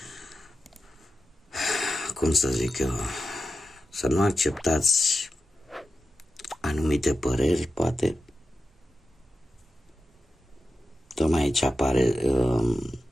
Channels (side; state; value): both; normal; correlation 0.91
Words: cum să zic eu, să nu acceptați anumite păreri, poate. Tocmai aici apare